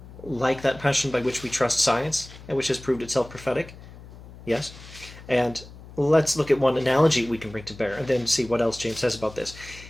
like that passion by which we trust science, and which has proved itself prophetic? Yes. And let's look at one analogy we can bring to bear, and then see what else James says about this.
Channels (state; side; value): noise; left; hum, 17 dB below the sound